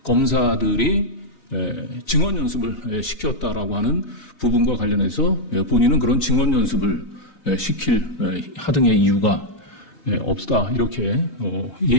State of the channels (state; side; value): late; right; 3.9 ms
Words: 검사들이 증언 연습을 시켰다라고 하는 부분과 관련해서 본인은 그런 증언 연습을 시킬 하등의 이유가 없다, 이렇게